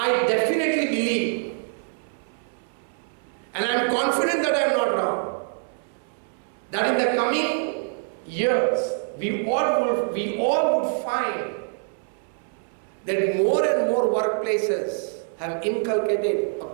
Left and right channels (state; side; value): silent; left; 62 dB below the other